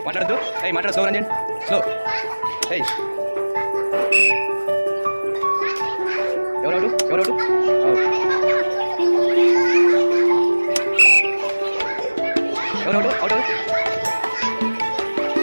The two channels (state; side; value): inverted; both; correlation -1.00